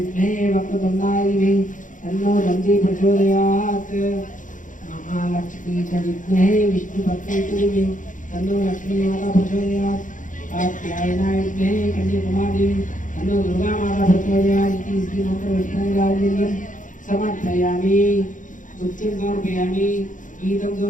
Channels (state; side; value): late; right; 0.37 ms